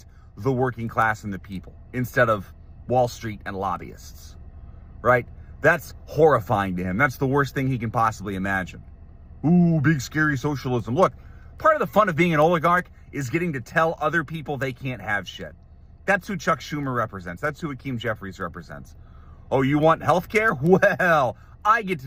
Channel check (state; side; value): identical; both; correlation 1.00